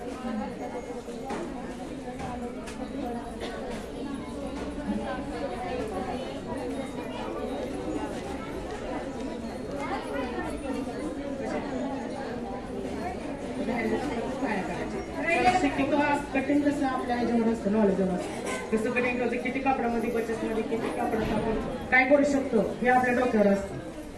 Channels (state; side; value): identical; both; correlation 1.00